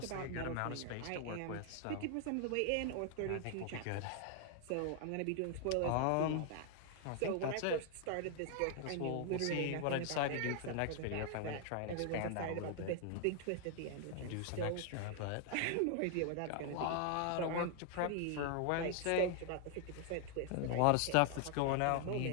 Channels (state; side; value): different; both; correlation 0.00